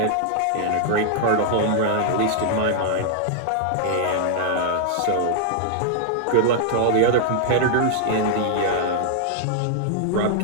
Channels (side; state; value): both; different; correlation 0.00